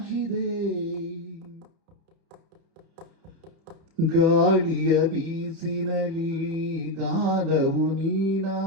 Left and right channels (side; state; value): left; late; 31 ms